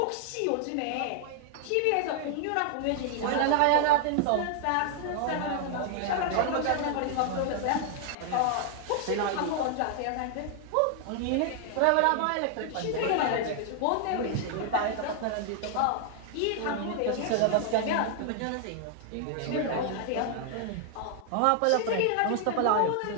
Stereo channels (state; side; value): different; both; correlation 0.00